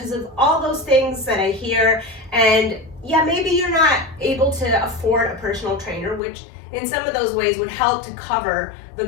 of all those things that I hear. And yeah, maybe you're not able to afford a personal trainer, which in some of those ways would help to cover the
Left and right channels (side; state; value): right; drops out; at 6.2 s